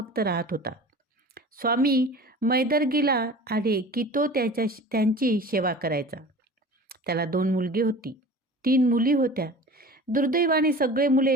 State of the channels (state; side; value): normal; both; correlation 0.39